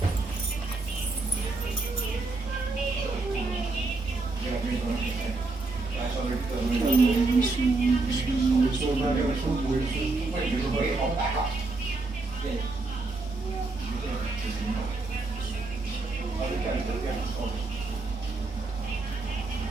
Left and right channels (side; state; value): left; quieter; 3.4 dB